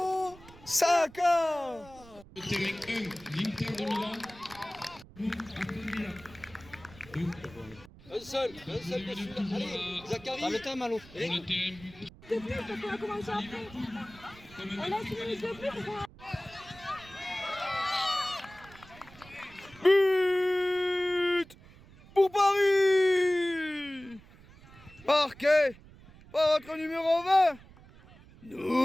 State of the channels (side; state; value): right; noise; rumble, 22 dB below the sound